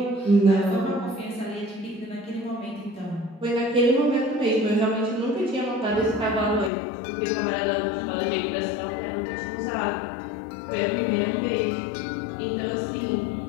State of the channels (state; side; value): drops out; right; at 6.7 s